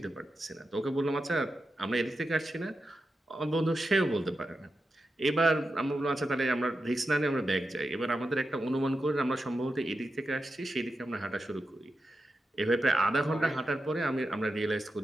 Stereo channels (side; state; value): both; normal; correlation 0.89